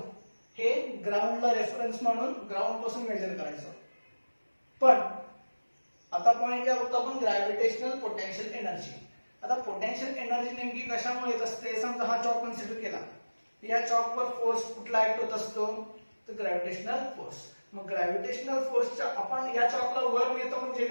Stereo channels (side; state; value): both; inverted; correlation -1.00